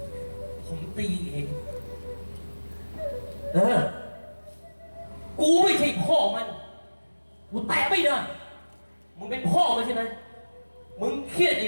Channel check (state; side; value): inverted; both; correlation -1.00